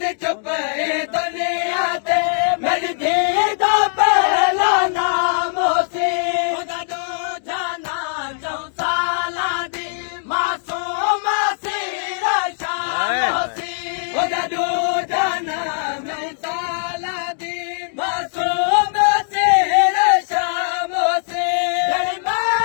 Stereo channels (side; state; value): right; silent; digital silence